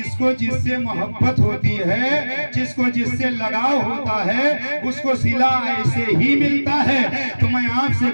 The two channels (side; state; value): both; inverted; correlation -1.00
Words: کو جس سے محبت ہوتی ہے، جس کو جس سے لگاؤ ہوتا ہے، اس کو صلہ ایسے ہی ملتا ہے۔ تو میں آپ سے